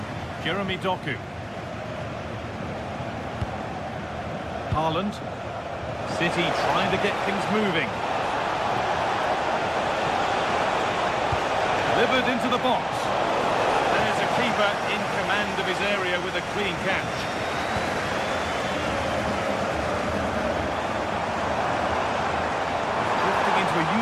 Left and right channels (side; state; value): both; identical; correlation 1.00